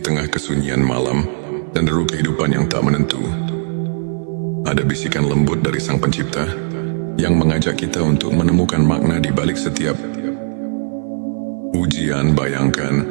tengah kesunyian malam dan deru kehidupan yang tak menentu, ada bisikan lembut dari Sang Pencipta yang mengajak kita untuk menemukan makna di balik setiap ujian. Bayangkan,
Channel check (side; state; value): left; silent; 57 dB below the other